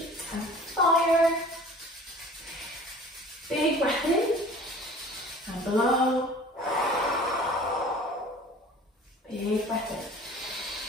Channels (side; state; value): both; normal; correlation 0.46